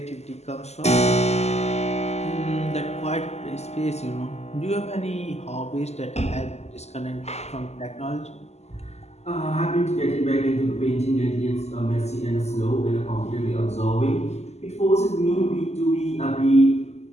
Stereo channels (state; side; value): late; right; 0.32 ms